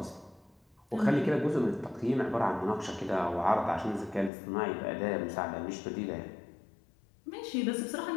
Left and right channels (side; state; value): right; drops out; at 4.3 s